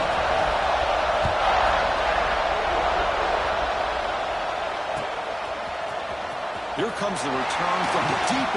Here comes the return from deep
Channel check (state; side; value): identical; both; correlation 1.00